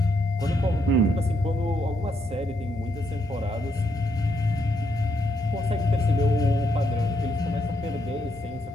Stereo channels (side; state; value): both; normal; correlation 0.77